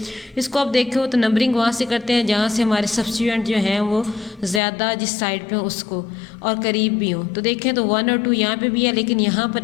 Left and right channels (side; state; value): right; drops out; at 4.6 s